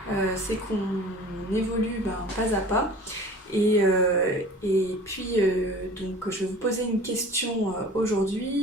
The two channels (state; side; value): normal; both; correlation 0.43